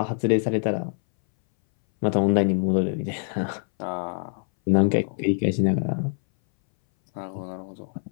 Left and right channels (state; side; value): silent; right; 60 dB below the other